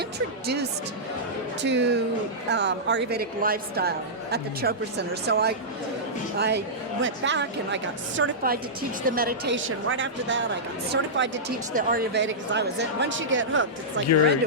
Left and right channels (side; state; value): both; normal; correlation -0.13